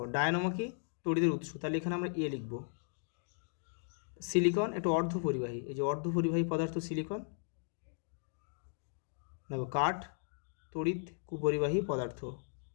ডায়নামো কি? তড়িতের উৎস, তাহলে এখানে আমরা এ লিখব। সিলিকন একটু অর্ধপরিবাহী, এই যে অর্ধপরিবাহী পদার্থ সিলিকন। দেখো কাঠ তড়িৎ কুপরিবাহী পদার্থ,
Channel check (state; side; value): silent; right; digital silence